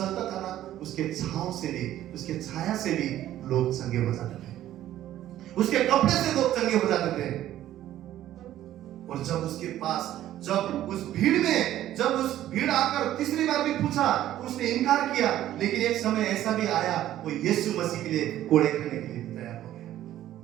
था ना, उसके छांव से भी, उसके छाया से भी लोग चंगे हो जाते थे, उसके कपड़े से लोग चंगे हो जाते थे। और जब उसके पास, जब उस भीड़ आकर तीसरी बार भी पूछा, उसने इनकार किया, लेकिन एक समय ऐसा भी आया, वो यीशु मसीह के लिए कोड़े खाने के लिए तैयार हो गया।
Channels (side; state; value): left; quieter; 12.9 dB